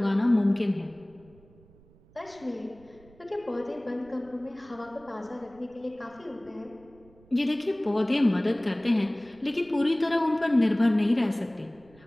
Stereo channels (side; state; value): right; noise; rumble, 27 dB below the sound